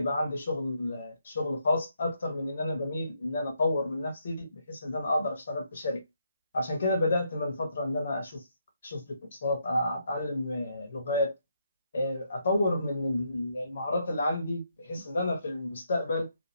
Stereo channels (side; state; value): both; inverted; correlation -0.77